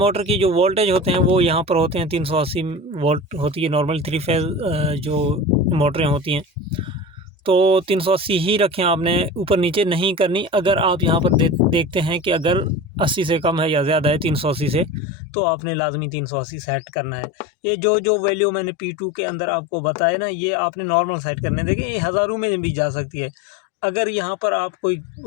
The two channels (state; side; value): drops out; right; at 15.0 s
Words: की जो वोल्टेज होते हैं वो यहाँ पर होते हैं 380 वोल्ट होती है नॉर्मल 3 फेज़ जो मोटरें होती हैं, तो 380 ही रखें, आपने ऊपर नीचे नहीं करनी। अगर आप यहाँ पर देखते हैं कि अगर 80 से कम है या ज़्यादा है 380 से, तो आपने लाजमी 380 सेट करना है। ये जो वैल्यू मैंने P2 के अंदर आपको बताया ना, ये आपने नॉर्मल सेट करने। देखें ये हज़ारों में भी जा सकती है। अगर यहाँ पर आप कोई